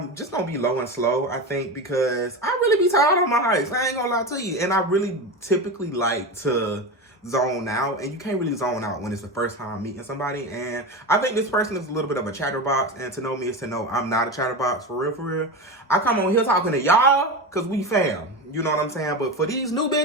just going to be low and slow, I think, because I really be tired on my hikes. I ain't going to lie to you. And I really typically like to zone out. And you can't really zone out when it's the first time meeting somebody. And I think this person is a little bit of a chatterbox. And to know me is to know I'm not a chatterbox, for real, for real. I come on here talking to y'all because we fam. You know what I'm saying? But for these new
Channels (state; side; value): normal; both; correlation 0.22